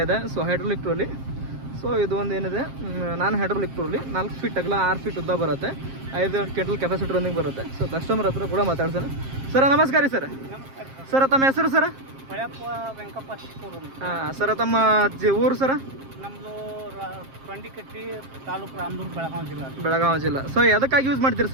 ಇದೆ. So hydraulic trolley. ಸೊ ಇದು ಒಂದು ಏನಿದೆ, ನಾನು ಹೈಡ್ರೋಲಿಕ್ ಟ್ರೋಲಿ 4 ಫೀಟ್ ಅಗಲ 6 ಫೀಟ್ ಉದ್ದ ಬರುತ್ತೆ. 5 ಕ್ವಿಂಟಲ್ ಕೆಪಾಸಿಟರ್ ಒಂದಿಗೆ ಬರುತ್ತೆ. ಸೊ ಕಸ್ಟಮರ್ ಹತ್ರ ಕೂಡ ಮಾತಾಡ್ಸೋಣ. ಸರ್ ನಮಸ್ಕಾರ ರೀ. ಸರ್ ತಮ್ಮ ಹೆಸರು ಸರ್? ಹಾಂ ಸರ್, ತಮ್ಮ ಊರು ಸರ? ನಮ್ಮದು ಕೊಂಡಿಕಟ್ಟಿ ತಾಲೂಕು ರಾಮದುರ್ಗ, ಬೆಳಗಾವಿ ಜಿಲ್ಲಾ. ಸೊ ಎದಕ್ಕಾಗಿ ಯೂಸ್ ಮಾಡ್ತೀರಿ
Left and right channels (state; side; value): late; left; 7.5 ms